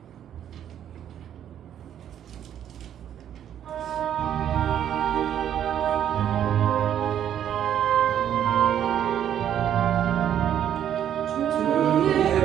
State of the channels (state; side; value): quieter; left; 10.1 dB